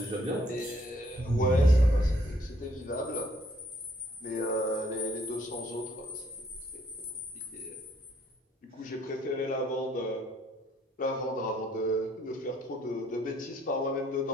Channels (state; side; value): normal; both; correlation 0.66